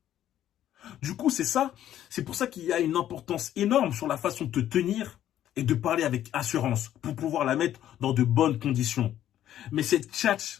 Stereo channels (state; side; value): quieter; right; 11.7 dB